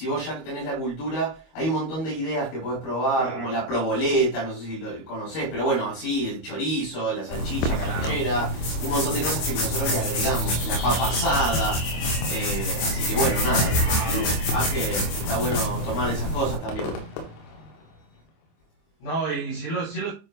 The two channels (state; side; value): late; right; 25 ms